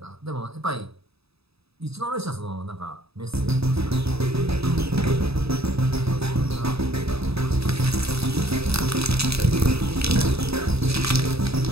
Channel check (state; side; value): late; left; 0.78 ms